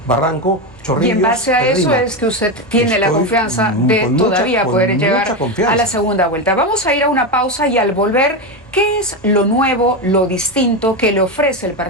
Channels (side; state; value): both; normal; correlation 0.13